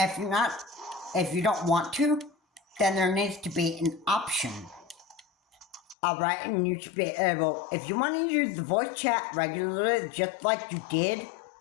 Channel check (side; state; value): right; drops out; at 6.0 s